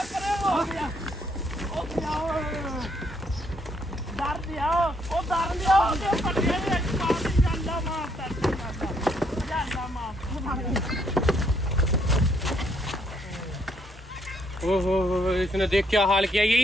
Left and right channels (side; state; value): both; normal; correlation 0.71